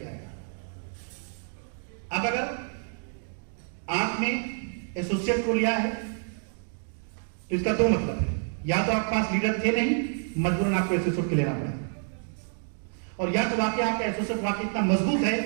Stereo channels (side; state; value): left; silent; 56 dB below the other